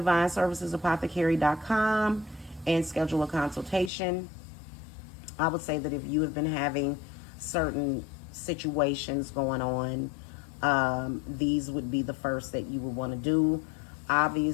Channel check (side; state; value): right; drops out; at 3.9 s